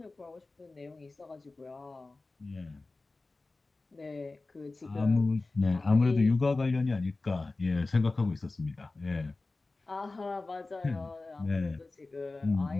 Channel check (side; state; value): right; quieter; 3.4 dB